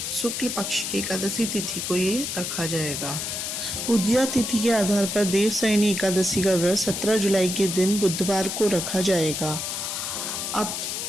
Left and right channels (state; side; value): noise; left; hiss, 3 dB below the sound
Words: शुक्ल पक्ष की एकादशी तिथि को ये रखा जाएगा। उदया तिथि के आधार पर देवशयनी एकादशी का व्रत 17 जुलाई के दिन बुधवार को रखा जाएगा। अब